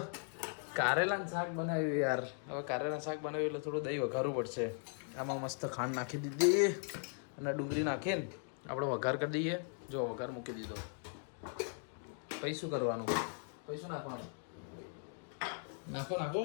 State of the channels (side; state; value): right; silent; 52 dB below the other